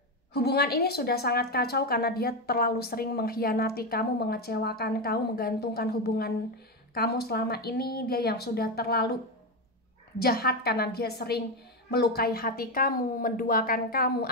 hubungan ini sudah sangat kacau karena dia terlalu sering mengkhianati kamu, mengecewakan kamu, menggantungkan hubungan kamu selama ini. Dia yang sudah terlalu jahat karena dia sering melukai hati kamu, menduakan kamu,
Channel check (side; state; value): both; normal; correlation 0.11